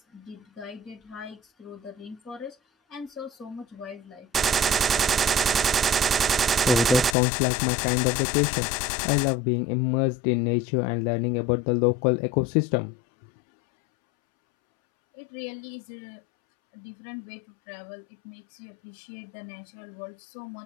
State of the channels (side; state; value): right; drops out; at 7.2 s